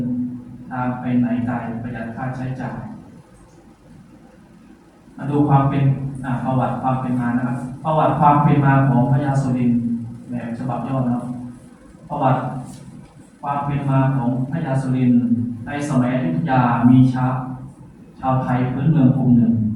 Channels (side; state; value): both; identical; correlation 1.00